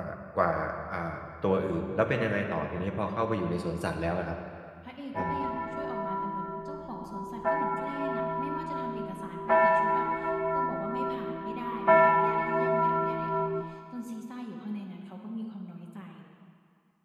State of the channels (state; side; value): identical; both; correlation 1.00